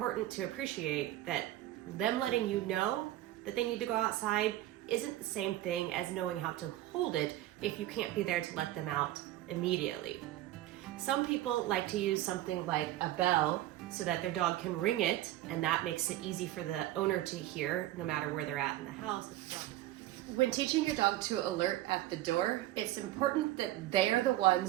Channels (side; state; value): left; quieter; 14.9 dB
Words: to appreciate that them letting you know that they need to go outside isn't the same thing as knowing how to hold it if you can't be there to let them out immediately. Some people like to use something like a bell so that their dog can ring it, and that makes it easy for the owner to hear no matter where they're at in the house. When teaching your dog to alert at the door, it's important that they are the